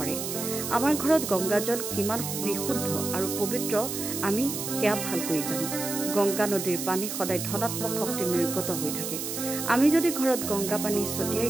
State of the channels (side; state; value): right; noise; hiss, 5 dB below the sound